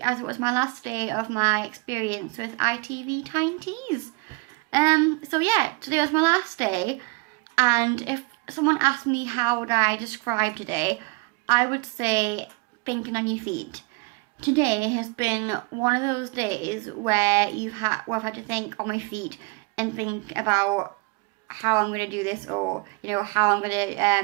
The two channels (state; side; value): quieter; left; 27.8 dB